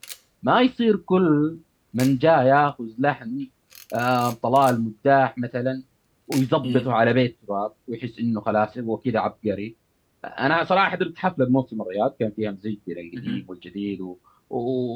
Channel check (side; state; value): both; identical; correlation 1.00